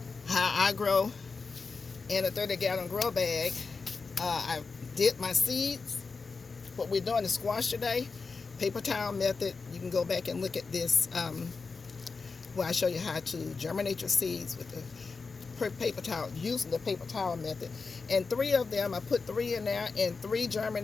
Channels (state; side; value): quieter; right; 4.6 dB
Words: how I grow in a 30-gallon grow bag. I did my seeds. What we're doing is squash today, paper towel method. You can go back and look at this where I show you how to germinate your seeds with the paper towel, using the paper towel method. And 3 of them, I put 3 in there and 3